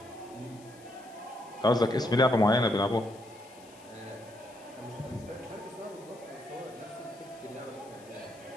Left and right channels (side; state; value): left; noise; hiss, 24 dB below the sound